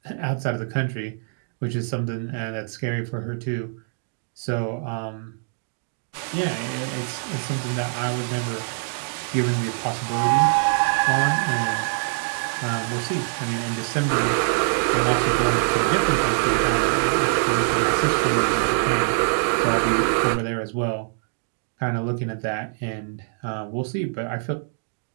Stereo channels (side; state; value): left; silent; 63 dB below the other